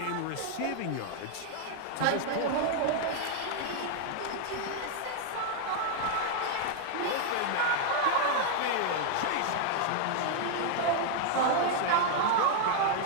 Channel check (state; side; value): different; both; correlation 0.00